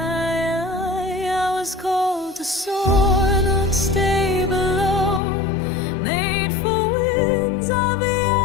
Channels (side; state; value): right; drops out; at 5.2 s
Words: I was called to soar, not stay below, made for wings I've